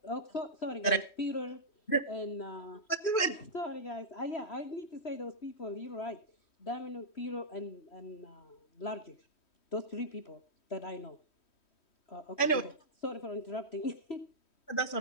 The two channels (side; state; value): right; late; 3.1 ms